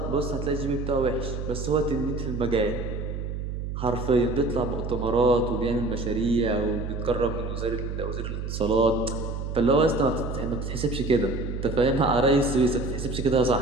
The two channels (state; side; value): noise; right; hum, 5 dB below the sound